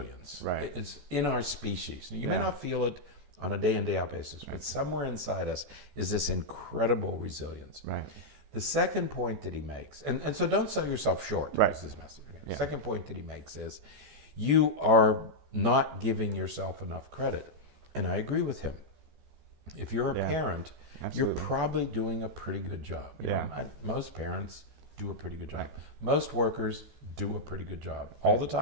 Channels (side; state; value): left; late; 14 ms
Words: Right. It's in our species. You may not feel it on a day in, day out basis, but somewhere inside us is this incredible resilience. Right. The second point that he makes, and so don't sell yourself short. Right. Is his message. The second point that he makes is you are not giving yourself enough credit. And I agree with him. If you're a parent, you're probably doing a pretty good job. You know, most parents do a pretty good job. Most workers do a pretty good job. All the